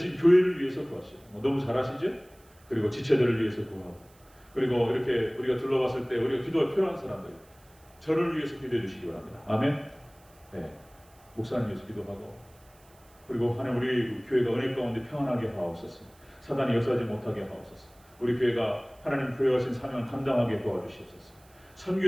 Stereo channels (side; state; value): right; noise; hiss, 29 dB below the sound